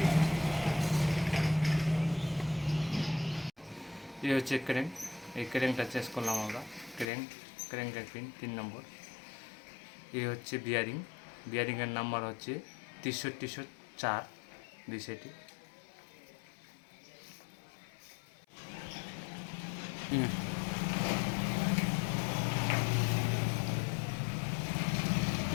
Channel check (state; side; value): drops out; right; at 7.1 s